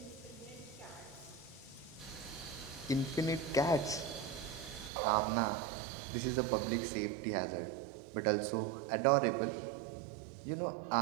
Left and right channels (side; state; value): left; drops out; at 4.9 s